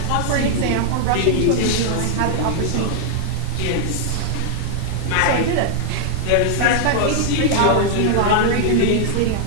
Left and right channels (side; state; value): both; different; correlation -0.01